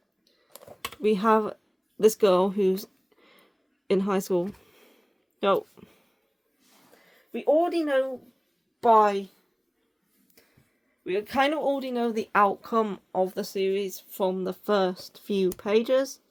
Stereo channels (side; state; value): both; identical; correlation 1.00